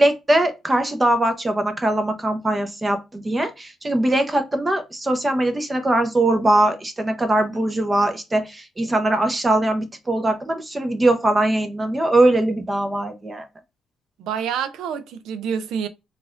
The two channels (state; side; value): normal; both; correlation 0.89